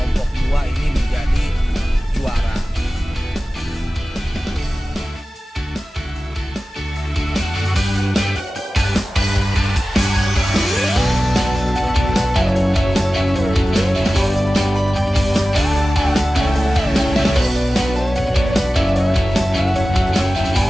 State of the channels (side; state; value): both; normal; correlation 0.95